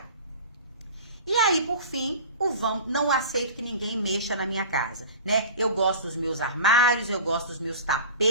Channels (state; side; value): inverted; both; correlation -0.37